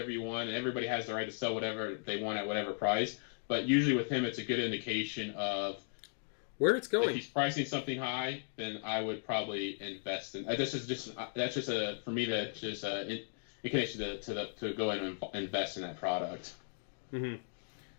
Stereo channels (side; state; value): right; silent; digital silence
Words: you want, and everybody has the right to sell whatever they want at whatever price. But usually with him, it's a good indication of where it's going. If he's pricing something high, then I would probably invest in. That's just for me, that's just an indication to go in and invest in that product. Mm-hmm.